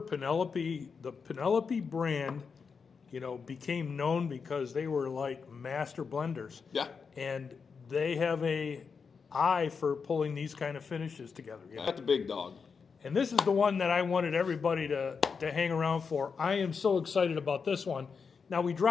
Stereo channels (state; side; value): quieter; right; 5.6 dB